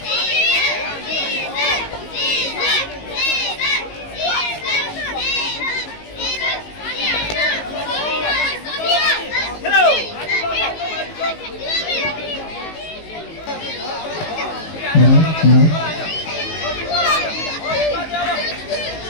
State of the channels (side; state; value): right; late; 19 ms